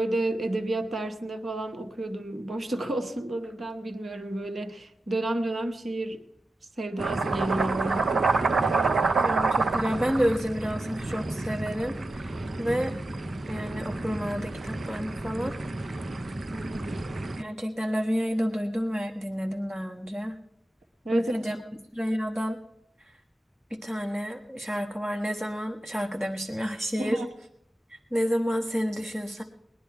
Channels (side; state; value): both; normal; correlation 0.92